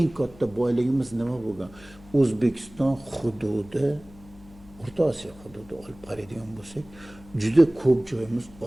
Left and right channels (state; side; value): noise; left; hum, 22 dB below the sound